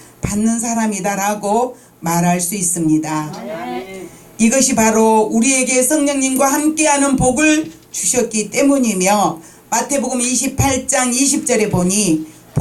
받는 사람이다라고 말할 수 있습니다. 이것이 바로 우리에게 성령님과 함께하는 복을 주셨기 때문이며, 마태복음 28장 20절에 보니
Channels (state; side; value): identical; both; correlation 1.00